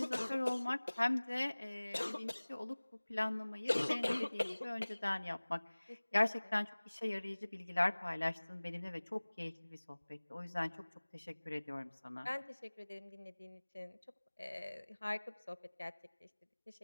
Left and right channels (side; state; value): both; inverted; correlation -1.00